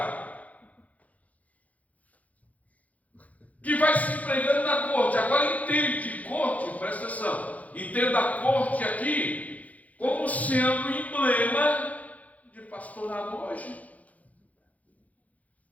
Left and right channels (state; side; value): late; right; 0.072 ms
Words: que vai se empregando na corte. Agora entende, corte, presta atenção, entenda a corte aqui como sendo emblema de pastorado hoje.